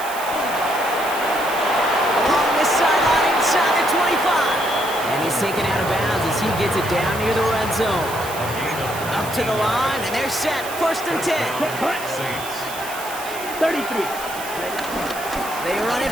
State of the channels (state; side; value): noise; right; hiss, 12 dB below the sound